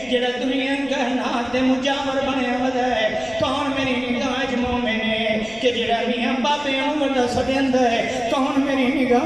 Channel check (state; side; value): noise; left; rumble, 23 dB below the sound